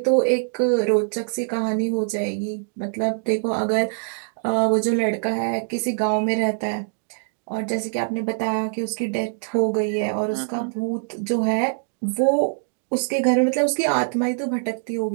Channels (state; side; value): silent; left; digital silence